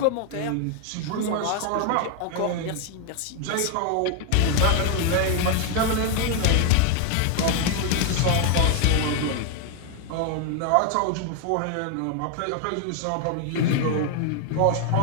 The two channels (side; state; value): both; different; correlation 0.01